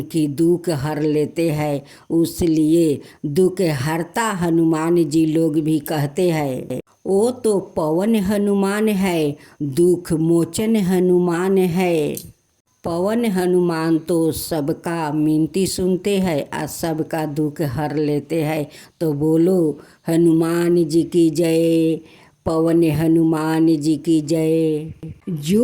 दुख हर लेते हैं, उसलिए दुख हरता हनुमान जी लोग भी कहते हैं। वो तो पवन हनुमान है, दुख मोचन हनुमान है। पवन हनुमान तो सबका मिनती सुनते हैं और सबका दुख हर लेते हैं। तो बोलो हनुमान जी की जय, पवन हनुमान जी की जय।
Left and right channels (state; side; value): identical; both; correlation 1.00